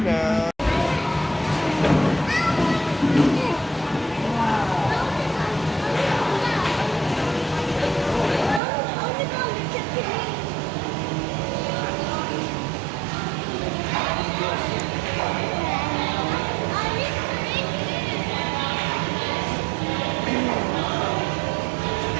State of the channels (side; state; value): left; drops out; at 8.6 s